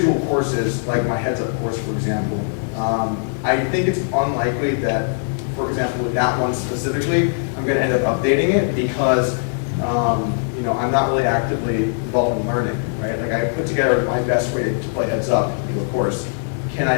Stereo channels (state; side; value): silent; right; digital silence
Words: courses, like my heads up course, for example, I think it's unlikely that, for example, with that one specifically, I'm going to end up updating it because I'm not really actively involved in learning, right? I put together my best way to play heads up, of course. Can